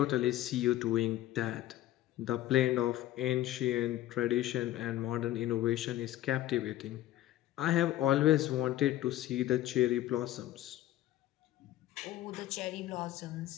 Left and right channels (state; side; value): quieter; right; 14.3 dB